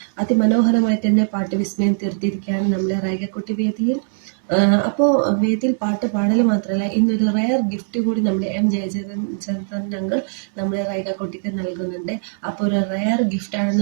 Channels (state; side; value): silent; left; digital silence